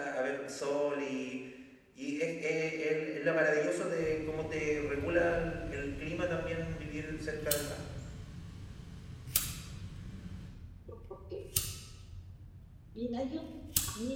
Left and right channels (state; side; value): identical; both; correlation 1.00